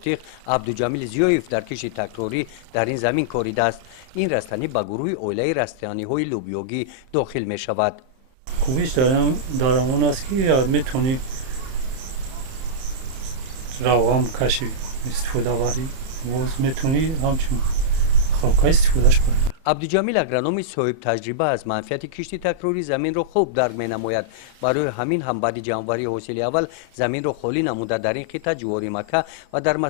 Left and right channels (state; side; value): late; left; 31 ms